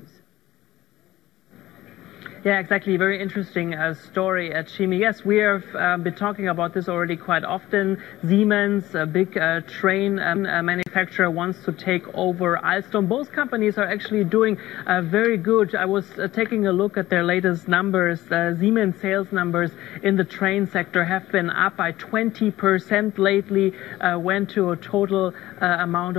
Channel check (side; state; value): right; quieter; 16.1 dB